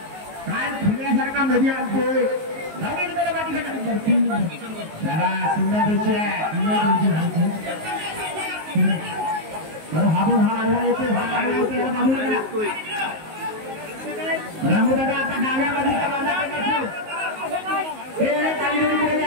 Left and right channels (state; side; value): late; left; 19 ms